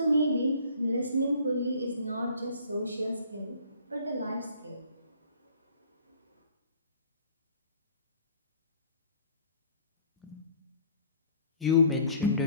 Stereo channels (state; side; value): inverted; both; correlation -0.54